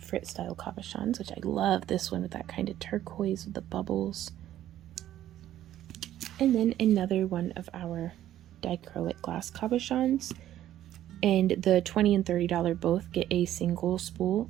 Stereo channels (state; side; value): quieter; left; 12.4 dB